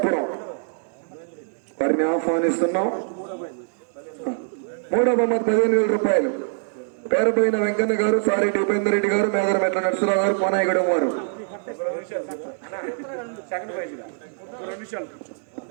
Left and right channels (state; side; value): silent; left; digital silence